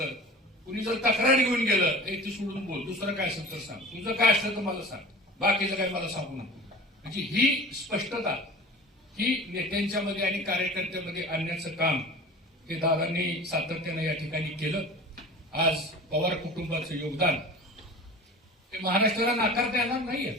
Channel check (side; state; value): both; normal; correlation 0.37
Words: कुणी जर तक्रार घेऊन गेलं ती सोडून बोल, दुसरं काय असेल तर सांग, तुझं काय असलं तर मला सांग, बाकीचं काय मला सांगू नको. म्हणजे ही स्पष्टता ही नेत्यांच्या मध्ये आणि कार्यकर्त्यामध्ये आणण्याचं काम हे दादांनी सातत्यानं या ठिकाणी केलं. आज पवार कुटुंबाचं योगदान हे महाराष्ट्राला नाकारता येणार नाहीये.